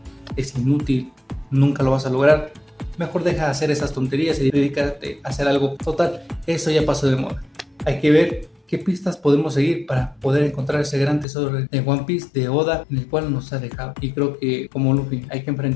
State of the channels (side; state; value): right; drops out; at 11.2 s